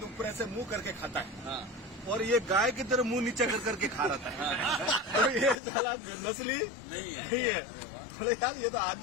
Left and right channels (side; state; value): right; drops out; at 5.6 s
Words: ऊपर ऐसे मुंह करके खाता है, और ये गाय की तरह मुंह नीचे कर करके खा रहा था। तो ये साला नस्ली नहीं है। बोले यार ये तो